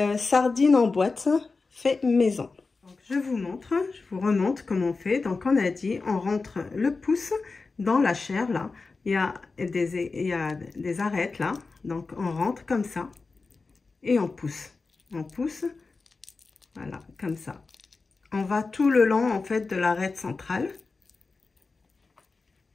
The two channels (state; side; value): quieter; right; 4.1 dB